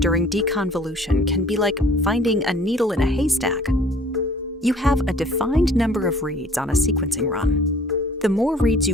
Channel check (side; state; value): both; normal; correlation 0.53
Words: deconvolution can be like finding a needle in a haystack. You have a defined number of reads on a sequencing run. The more reads